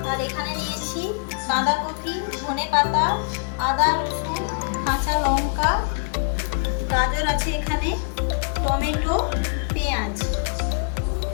আর এখানে নিয়েছি বাঁধাকপি, ধনেপাতা, আদা, রসুন, কাঁচা লঙ্কা, গাজর আছে এখানে, টমেটো, পেঁয়াজ।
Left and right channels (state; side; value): silent; right; 63 dB below the other